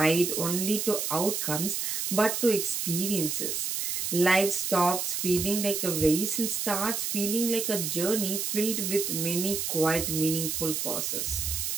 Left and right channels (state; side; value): noise; right; hiss, 1 dB below the sound